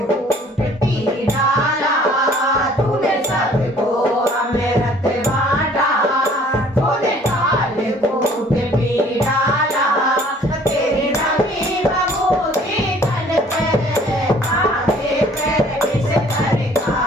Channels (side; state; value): both; normal; correlation 0.55